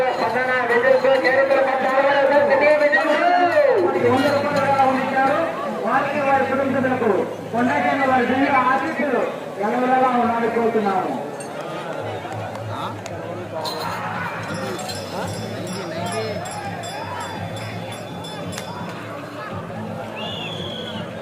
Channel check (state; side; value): identical; both; correlation 1.00